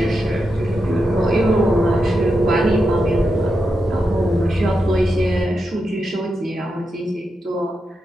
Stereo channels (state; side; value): normal; both; correlation 0.87